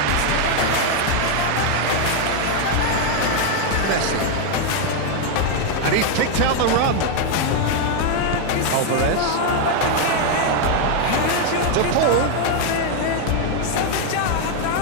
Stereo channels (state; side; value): different; both; correlation 0.01